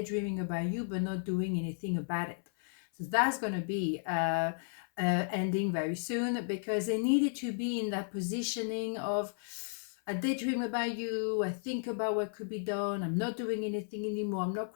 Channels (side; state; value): right; silent; 55 dB below the other